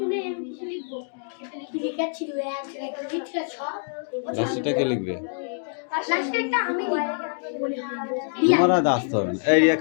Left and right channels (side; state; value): right; silent; digital silence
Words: লাস্টটা লিখবে? তোমার আর আসতে হবে না। এই Riya